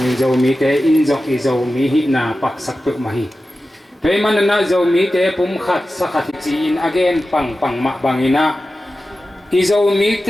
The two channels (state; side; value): normal; both; correlation 0.94